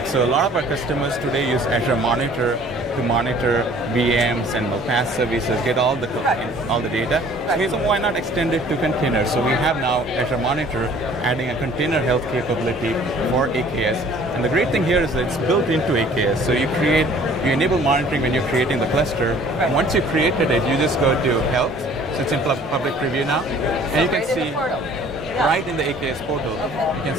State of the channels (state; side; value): normal; both; correlation 0.53